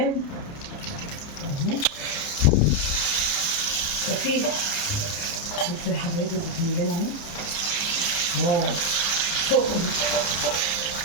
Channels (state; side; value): late; right; 29 ms